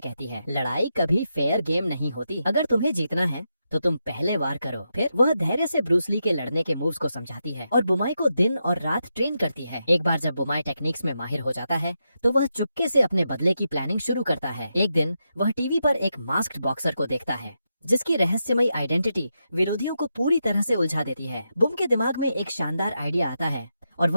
कहती है, लड़ाई कभी फेयर गेम नहीं होती। अगर तुम्हें जीतना है तो तुम पहले वार करो। फिर वह धैर्य से ब्रूस ली के लड़ने के मूव्स को समझाती है और बुमाई को दिन और रात ट्रेन करती है। एक बार जब बुमाई टेक्निक्स में माहिर हो जाता है तो वह चुपके से अपने बदले की प्लानिंग शुरू करता है। एक दिन वह टीवी पर एक मास्क्ड बॉक्सर को देखता है जिसकी रहस्यमयी आइडेंटिटी विरोधियों को पूरी तरह से उलझा देती है। बुम के दिमाग में एक शानदार आइडिया आता है और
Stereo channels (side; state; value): both; inverted; correlation -0.86